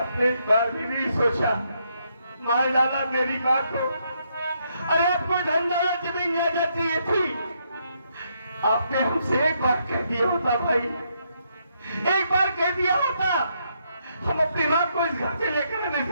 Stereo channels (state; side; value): inverted; both; correlation -0.76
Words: एक बार भी नहीं सोचा, मार डाला मेरी माँ को। अरे आपको धन दौलत जमीन जायदाद चाहिए थी, आपने हमसे एक बार कह दिया होता भाई, एक बार कह दिया होता, हम अपनी माँ को इस घर से लेकर आने